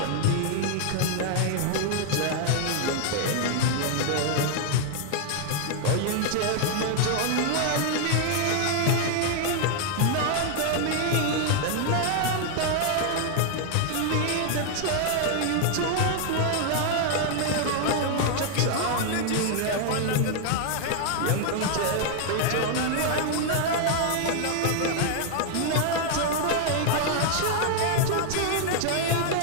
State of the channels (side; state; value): both; different; correlation 0.00